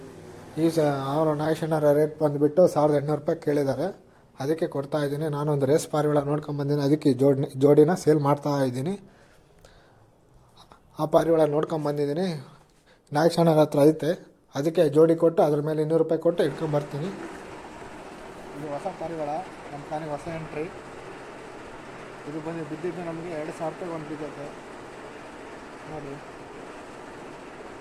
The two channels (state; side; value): identical; both; correlation 1.00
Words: ಅವರು ನಾಗೇಶಣ್ಣರ ರೇಟ್ ಬಂದುಬಿಟ್ಟು 1800 ರೂಪಾಯಿ ಕೇಳಿದ್ದಾರೆ. ಅದಕ್ಕೆ ಕೊಡ್ತಾ ಇದ್ದೀನಿ. ನಾನೊಂದು ರೇಸ್ ಪಾರಿವಾಳ ನೋಡ್ಕೊಂಬಂದಿನಿ, ಅದಕ್ಕೆ ಜೋಡಿನ ಸೇಲ್ ಮಾಡ್ತಾ ಇದ್ದೀನಿ. ಆ ಪಾರಿವಾಳ ನೋಡ್ಕೊಂಬಂದಿದ್ದೀನಿ, ನಾಗೇಶಣ್ಣರ ಹತ್ರ ಐತೆ. ಅದಕ್ಕೆ ಜೋಡಿ ಕೊಟ್ಟು ಅದ್ರ ಮೇಲೆ 200 ರೂಪಾಯಿ ಕೊಟ್ಟು ಇಟ್ಕೊಂಬರ್ತೀನಿ. ಇದು ಹೊಸ ಪಾರಿವಾಳ, ನಮ್ಮ ತಾನಿಗೆ ಹೊಸ ಎಂಟ್ರಿ. ಇದು ಬಿದ್ದಿದ್ದು ನಮಗೆ 2000 ರೂಪಾಯಿ ಒಂದು ಬಿದ್ದೈತೆ ನೋಡಿ.